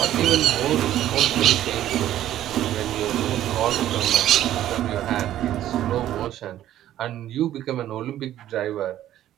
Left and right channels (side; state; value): left; quieter; 12.5 dB